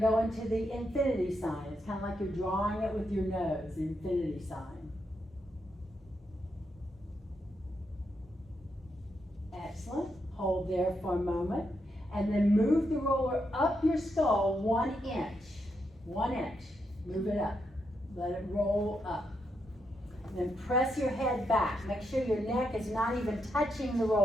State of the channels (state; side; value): normal; both; correlation 0.82